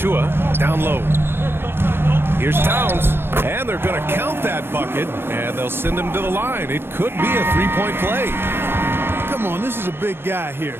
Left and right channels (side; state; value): left; late; 0.11 ms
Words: down low. Here's Towns, and they're going to count that bucket, and they'll send him to the line. It could be a three-point play. Come on, this is a big guy here,